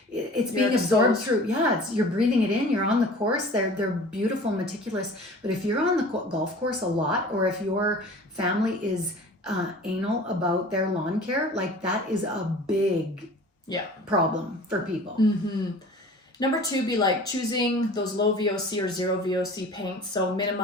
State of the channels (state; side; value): normal; both; correlation 0.43